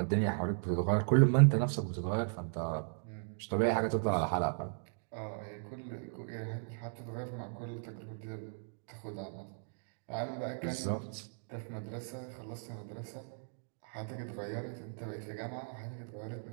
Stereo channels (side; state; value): left; silent; digital silence